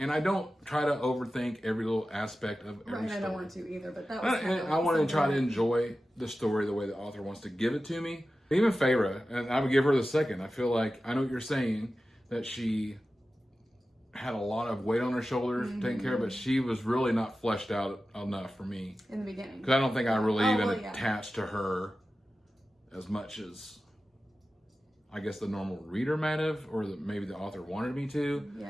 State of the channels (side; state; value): both; normal; correlation 0.94